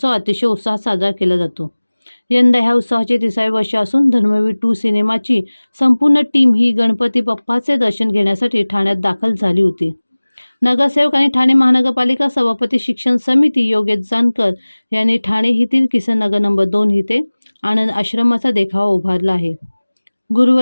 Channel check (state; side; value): inverted; both; correlation -1.00